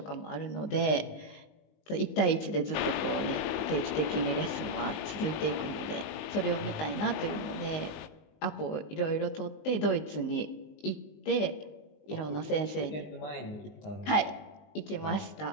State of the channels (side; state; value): right; late; 19 ms